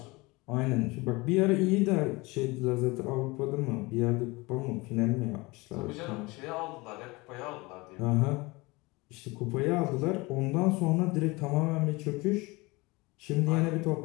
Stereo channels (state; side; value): quieter; right; 23.9 dB